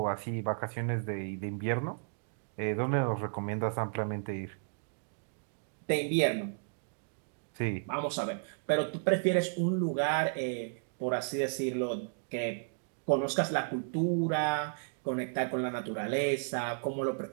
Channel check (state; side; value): silent; left; digital silence